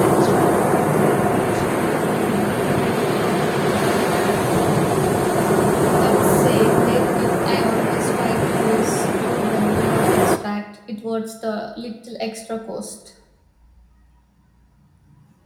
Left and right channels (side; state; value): both; identical; correlation 1.00